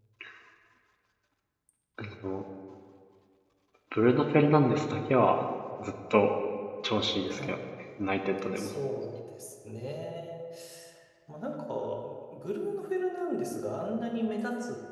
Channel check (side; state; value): both; identical; correlation 1.00